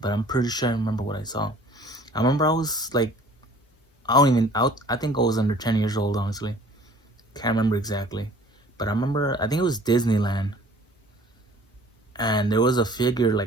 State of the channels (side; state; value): both; normal; correlation 0.52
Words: but I'm pretty sure I remember what I saw. I remember I was like, I think I was under 10 years old, honestly. Can't remember exactly. But I remember, I think it was Disneyland. And there was a figure